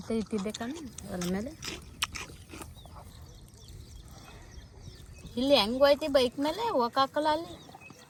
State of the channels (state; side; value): identical; both; correlation 1.00